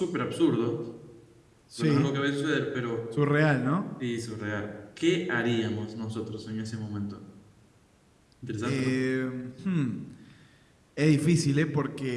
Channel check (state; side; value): identical; both; correlation 1.00